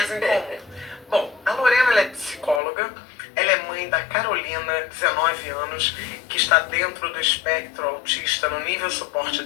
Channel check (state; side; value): drops out; right; at 2.6 s